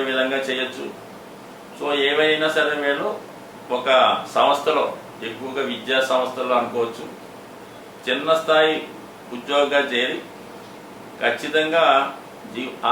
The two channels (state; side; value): identical; both; correlation 1.00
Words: విధంగా చేయొచ్చు. సో ఏవైనా సరే వీళ్ళు ఒక సంస్థలో, ఎక్కువగా విద్యా సంస్థల్లో అనుకోవచ్చు, చిన్న స్థాయి ఉద్యోగంగా చేరి ఖచ్చితంగా